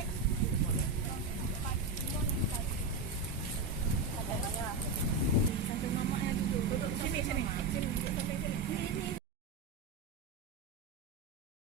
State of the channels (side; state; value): left; quieter; 3.7 dB